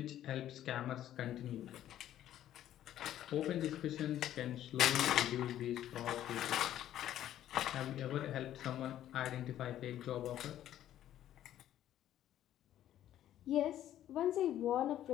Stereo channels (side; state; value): right; quieter; 12.0 dB